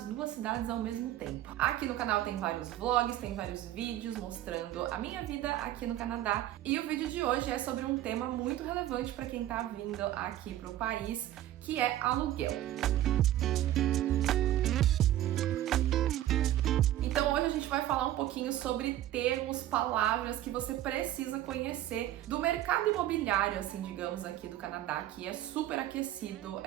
duas cidades ao mesmo tempo. Aqui no canal tem vários vlogs, tem vários vídeos mostrando a minha vida aqui no Canadá. E o vídeo de hoje é sobre um tema muito relevante para quem tá vindo aqui pro país, que é aluguel. Então hoje a gente vai falar um pouquinho sobre termos, palavras que você precisa conhecer do mercado imobiliário, assim, digamos, aqui do Canadá, que é super aquecido,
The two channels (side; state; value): left; quieter; 13.3 dB